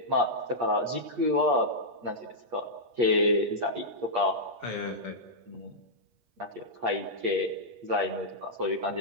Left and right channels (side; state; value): left; late; 8.5 ms